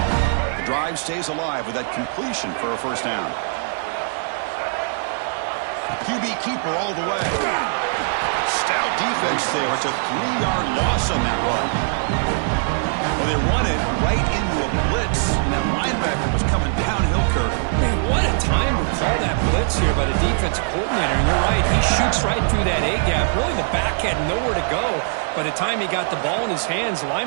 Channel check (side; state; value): left; silent; digital silence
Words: The drive stays alive with that completion for a first down. QB keeper all the way. Stout defense there. It's a 3-yard loss on that run. Well, they run it right into a blitz, and that linebacker was coming downhill, Kirk. Man, what a time to call that blitz here by the defensive coordinator. And you're right, he shoots right through that A-gap. Really, the back had nowhere to go. By the time he got the ball in his hands, the